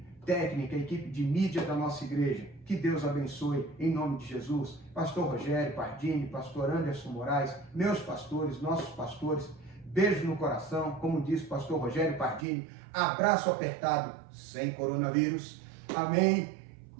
técnica, a equipe de mídia da nossa igreja. Que Deus abençoe em nome de Jesus. Pastor Rogério Pardini, pastor Anderson Moraes, meus pastores, nossos pastores. Beijo no coração, como disse o pastor Rogério Pardini. Abraço apertado, sem coronavírus. Amém.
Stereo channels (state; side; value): drops out; left; at 12.5 s